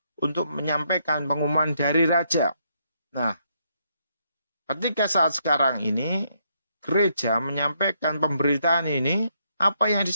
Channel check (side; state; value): both; inverted; correlation -0.75